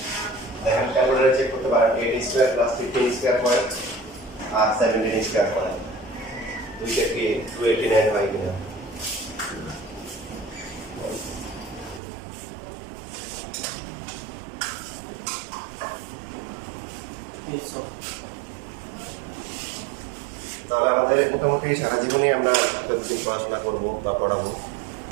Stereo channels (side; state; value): left; drops out; at 12.0 s